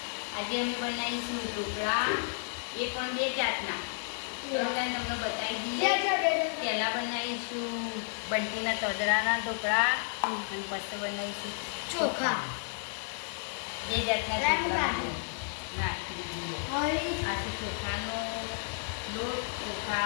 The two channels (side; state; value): right; silent; digital silence